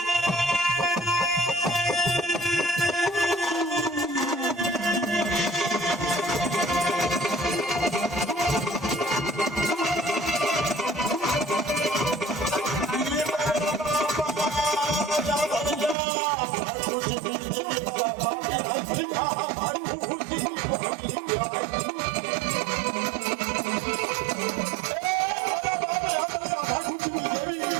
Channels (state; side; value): drops out; left; at 16.0 s